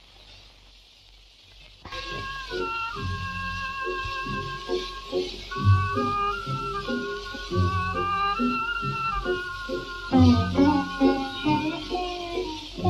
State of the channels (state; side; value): identical; both; correlation 1.00